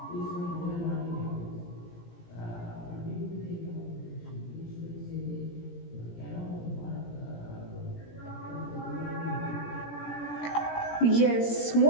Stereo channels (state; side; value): late; right; 17 ms